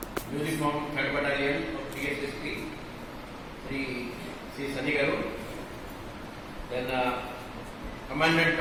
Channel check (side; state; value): both; identical; correlation 1.00